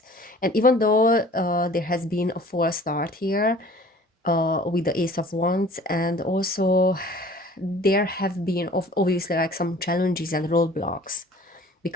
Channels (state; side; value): normal; both; correlation 0.49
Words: And even though there has been a false start here with the Ace of Wands, and also there have been obviously like some challenges and roadblocks